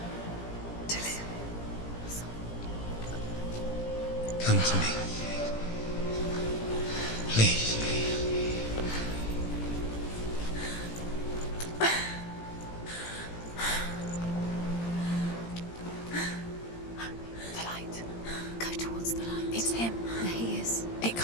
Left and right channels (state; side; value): late; right; 17 ms